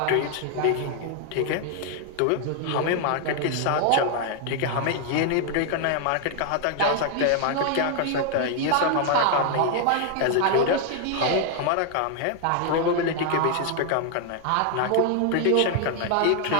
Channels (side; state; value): both; different; correlation 0.00